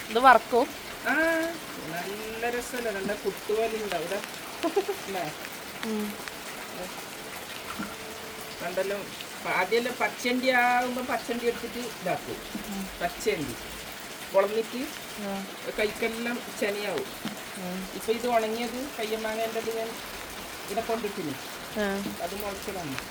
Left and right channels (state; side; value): identical; both; correlation 1.00